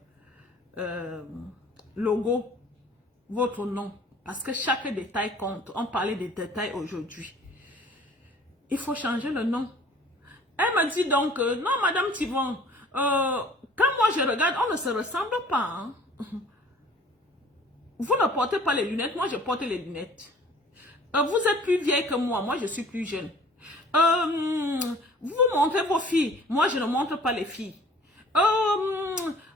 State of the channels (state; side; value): normal; both; correlation 0.51